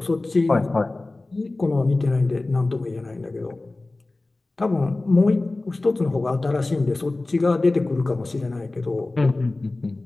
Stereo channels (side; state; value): right; quieter; 3.1 dB